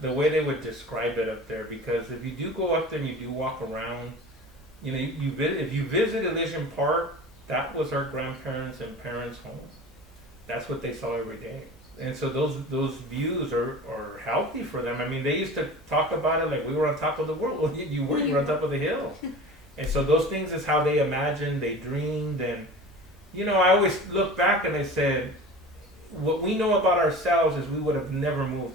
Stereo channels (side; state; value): both; normal; correlation 0.37